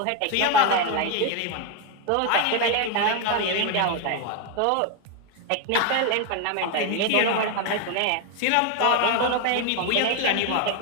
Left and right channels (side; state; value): both; different; correlation 0.01